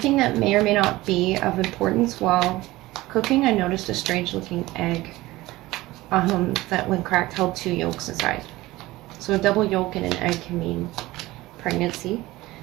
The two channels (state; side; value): quieter; left; 18.5 dB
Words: that may or may not be of importance while cooking, I noticed a strange looking egg that when cracked held 2 yolks inside. So a double yolk in an egg can mean pregnancy,